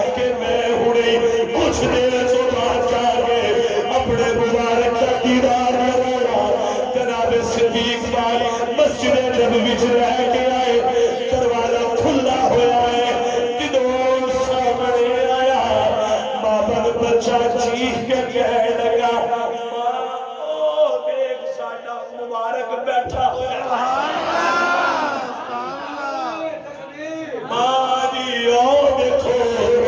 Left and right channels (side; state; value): both; identical; correlation 1.00